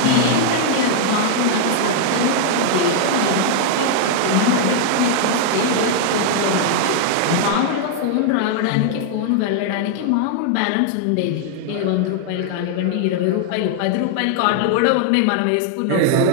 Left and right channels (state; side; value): different; both; correlation 0.00